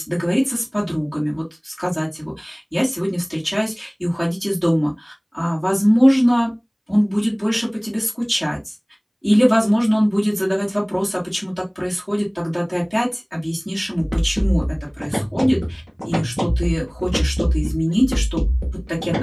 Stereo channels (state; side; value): identical; both; correlation 1.00